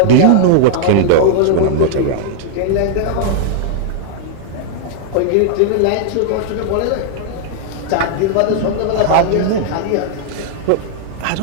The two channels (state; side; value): different; both; correlation -0.01